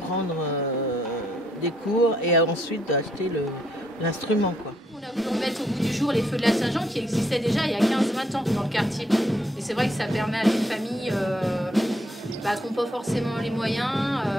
prendre des cours et ensuite d'acheter l'instrument, quoi. On a voulu remettre au bout du jour les feux de la Saint-Jean qui existaient déjà il y a 15-20 ans dans le quartier. Et c'est vrai que ça permet à des familles qui n'ont pas forcément les moyens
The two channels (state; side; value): normal; both; correlation 0.72